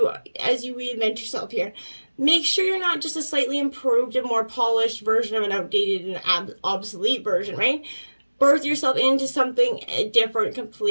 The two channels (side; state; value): both; inverted; correlation -1.00